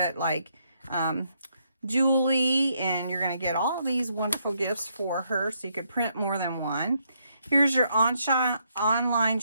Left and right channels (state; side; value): inverted; both; correlation -0.75